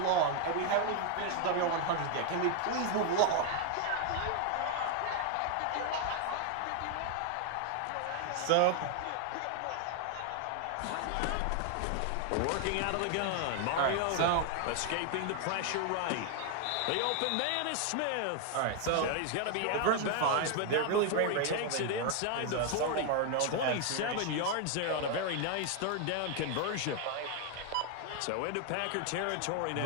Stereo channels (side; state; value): both; different; correlation 0.00